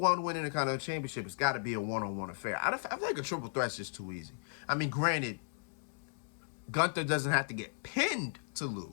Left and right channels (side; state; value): right; silent; digital silence